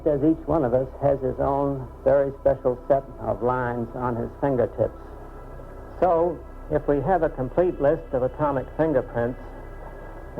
as each one of us has his own very special set of lines on his fingertips. So, if we have a complete list of atomic fingerprints,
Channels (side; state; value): both; identical; correlation 1.00